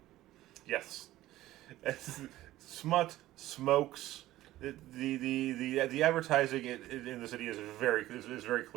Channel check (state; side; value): quieter; left; 15.5 dB